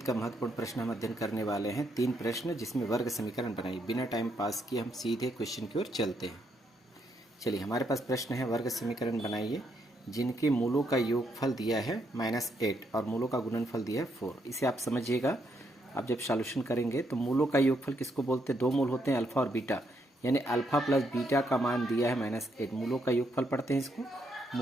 का महत्वपूर्ण प्रश्न हम अध्ययन करने वाले हैं। 3 प्रश्न जिसमें वर्ग समीकरण बनाइए। बिना टाइम पास किए हम सीधे क्वेश्चन की ओर चलते हैं। चलिए, हमारे पास प्रश्न है वर्ग समीकरण बनाइए जिनके मूलों का योगफल दिया है -8 और मूलों का गुणनफल दिया है 4। इसे आप समझिएगा। आप जब सॉल्यूशन करेंगे तो मूलों का योगफल किसको बोलते हैं? 2 मूल होते हैं, अल्फा और बीटा, यानी अल्फा प्लस बीटा का मान दिया है -8, मूलों का योगफल पढ़ते हैं इसको।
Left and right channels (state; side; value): normal; both; correlation 0.76